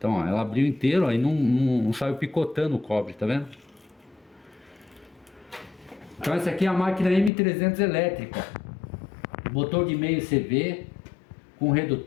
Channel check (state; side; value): drops out; right; at 7.3 s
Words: ó, ela abriu inteiro, aí não saiu picotando o cobre, tá vendo? Então essa aqui é a máquina M300 elétrica, motor de meio CV com